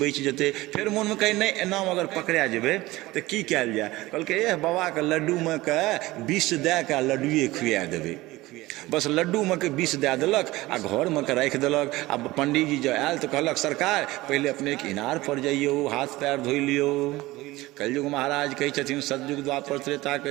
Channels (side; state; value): left; quieter; 19.1 dB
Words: जेतै। फिर मोन में कहै नहीं एना अगर पकड़ा जेबै तो की कयल जाय। कहलकै एह बाबा के लड्डू में के विष दए के लड्डुए खुआ देबै। बस लड्डू में के विष दए देलक आ घर में के राखि देलक। आ पंडित जी जो आयल तो कहलक सरकार पहले अपने के इनार पर जाइयो, हाथ पैर धो लियो। कलयुग महाराज कहै छथिन सतयुग द्वापर त्रेता